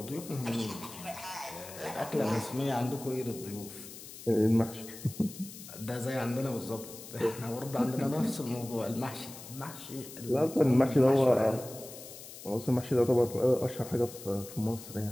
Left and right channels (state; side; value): noise; left; hiss, 14 dB below the sound